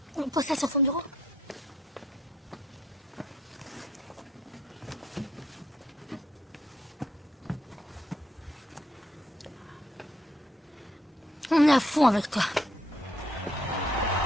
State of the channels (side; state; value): both; normal; correlation 0.70